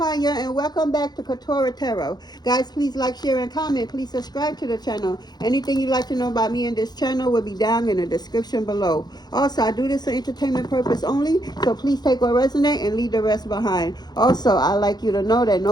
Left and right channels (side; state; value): right; late; 0.20 ms